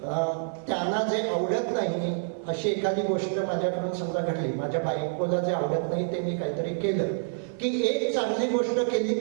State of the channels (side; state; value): left; silent; digital silence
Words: त्यांना जे आवडत नाही अशी एखादी गोष्ट माझ्याकडून समजा घडली, माझ्या बायकोला जे आवडत नाही ते मी काहीतरी केलं की एक चांगली गोष्ट केली